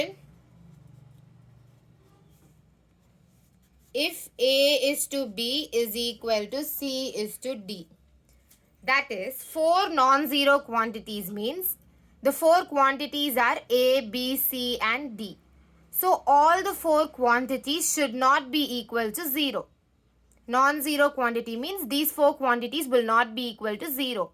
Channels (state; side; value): identical; both; correlation 1.00